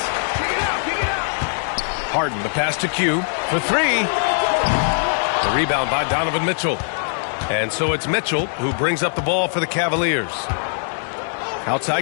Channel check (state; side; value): silent; right; 65 dB below the other